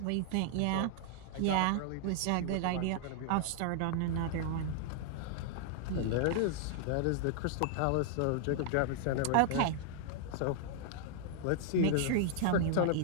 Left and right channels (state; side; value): different; both; correlation -0.01